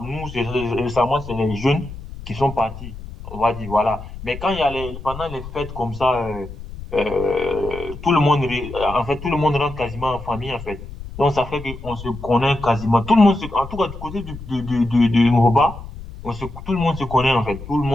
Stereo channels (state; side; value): noise; left; rumble, 12 dB below the sound